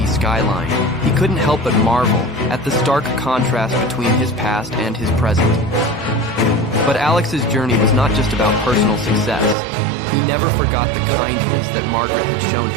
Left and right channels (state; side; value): drops out; left; at 9.6 s